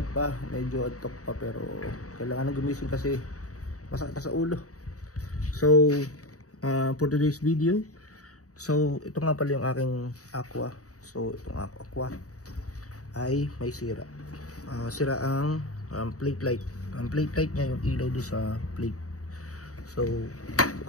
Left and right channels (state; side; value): late; right; 0.66 ms